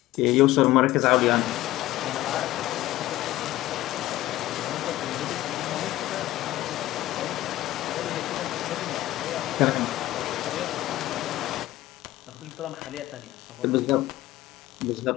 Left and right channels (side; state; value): right; quieter; 15.9 dB